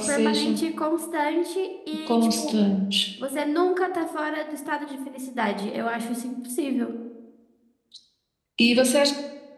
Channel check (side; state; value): both; identical; correlation 1.00